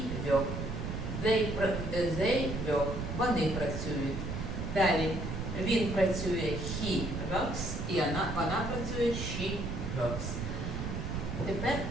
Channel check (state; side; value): noise; right; rumble, 4 dB below the sound